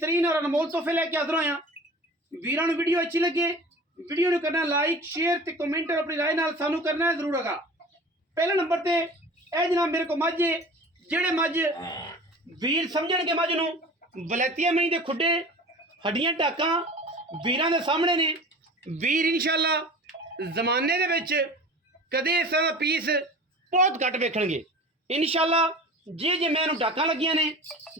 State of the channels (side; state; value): both; normal; correlation 0.39